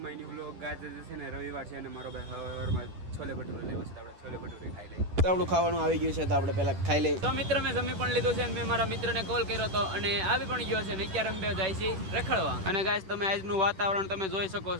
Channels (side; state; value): left; late; 10 ms